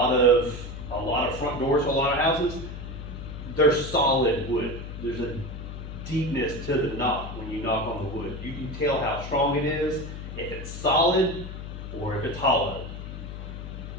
of front doors for a lot of houses, they're solid wood. There's a deepness to the knock when you knock on the wood. You can tell how strong it is, if it's solid or if it's hollow.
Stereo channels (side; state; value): left; noise; hum, 9 dB below the sound